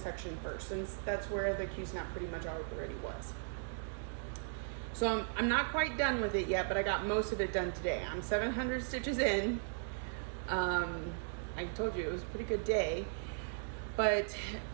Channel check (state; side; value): silent; left; digital silence